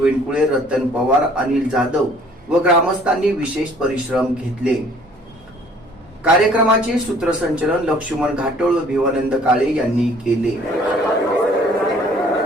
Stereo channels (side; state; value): both; normal; correlation 0.56